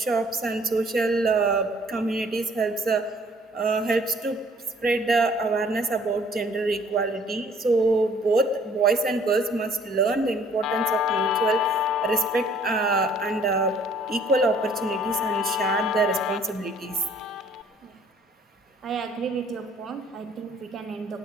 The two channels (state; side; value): normal; both; correlation 0.58